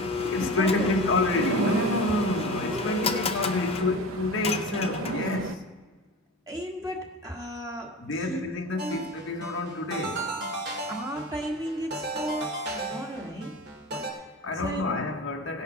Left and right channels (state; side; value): normal; both; correlation 0.32